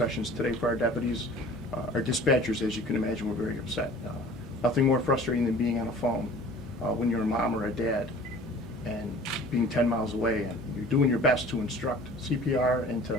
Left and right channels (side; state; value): left; noise; hum, 21 dB below the sound